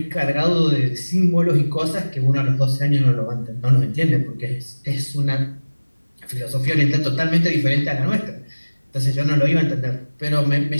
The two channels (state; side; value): inverted; both; correlation -1.00